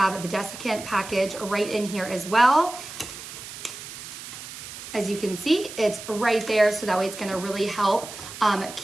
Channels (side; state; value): right; noise; hiss, 12 dB below the sound